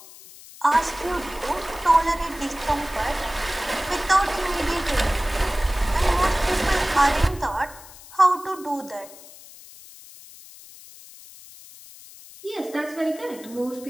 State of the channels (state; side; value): noise; left; hiss, 19 dB below the sound